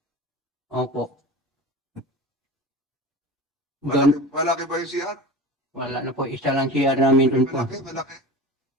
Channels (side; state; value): both; normal; correlation 0.34